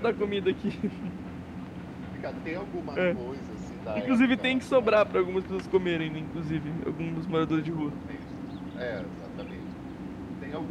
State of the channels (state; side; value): identical; both; correlation 1.00